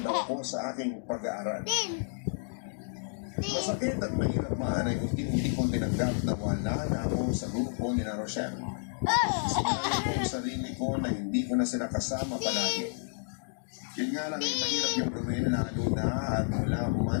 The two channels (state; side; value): silent; right; digital silence